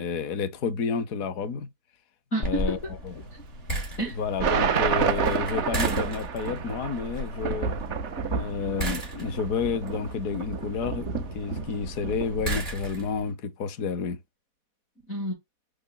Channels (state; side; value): late; right; 4.1 ms